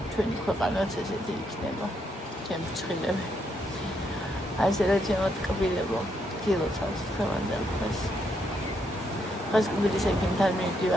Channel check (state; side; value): normal; both; correlation 0.77